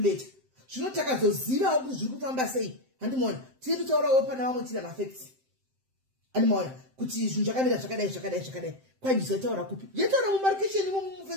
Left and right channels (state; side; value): late; left; 7.7 ms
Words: Zvino takazozivawo kuti zviri kufamba sei. Handimoona. Tiri kutaurawo pana vamwe tiri mafacts. Handimoona kuti zvinhu zvakamira zvakadai. Kwanjisa taura kupi? Yataura mumarkation